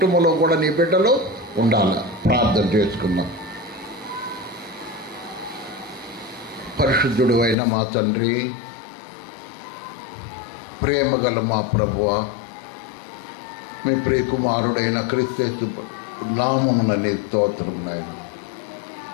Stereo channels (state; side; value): drops out; right; at 7.6 s